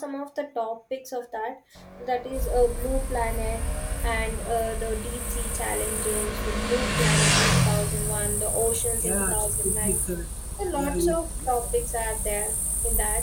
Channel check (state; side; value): identical; both; correlation 1.00